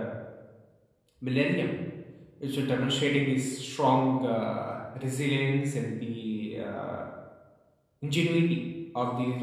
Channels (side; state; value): both; identical; correlation 1.00